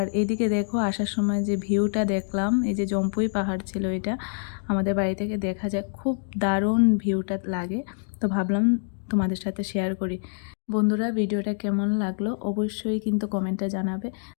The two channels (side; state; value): right; silent; digital silence